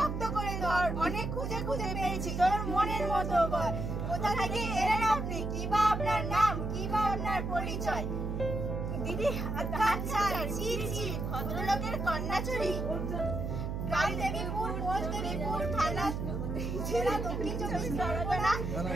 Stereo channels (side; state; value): right; noise; hum, 3 dB below the sound